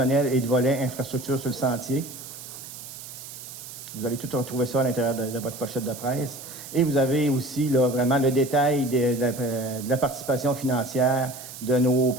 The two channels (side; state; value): right; noise; hiss, 13 dB below the sound